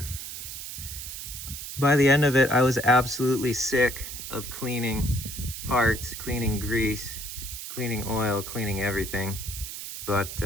By the end of it, I was absolutely sick of cleaning parts, cleaning grease, cleaning oil, cleaning everything. But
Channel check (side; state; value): right; noise; hiss, 8 dB below the sound